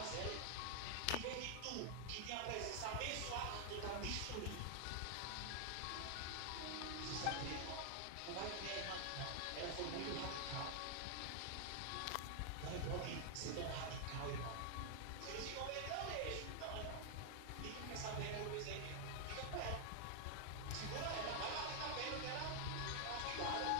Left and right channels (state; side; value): different; both; correlation 0.00